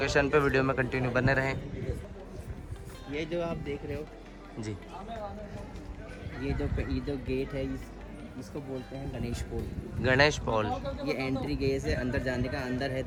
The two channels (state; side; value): identical; both; correlation 1.00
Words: पे, वीडियो में कंटिन्यू बने रहें। ये जो आप देख रहे हो, जी। ये जो गेट है, इसको बोलते हैं गणेश पोल। गणेश पॉल। ये एंट्री गेट है अंदर जाने का। अंदर है